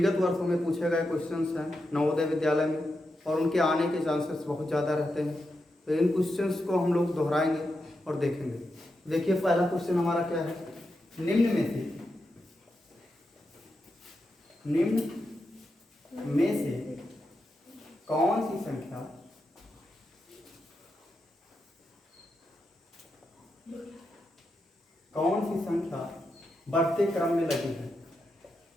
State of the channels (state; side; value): normal; both; correlation 0.87